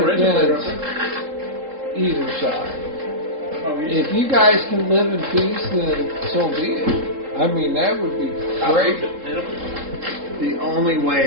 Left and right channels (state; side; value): late; left; 3.7 ms